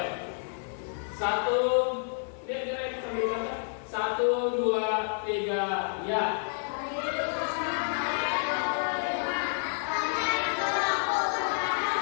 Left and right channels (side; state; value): right; silent; digital silence